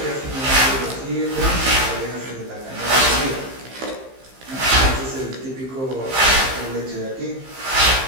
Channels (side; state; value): left; late; 15 ms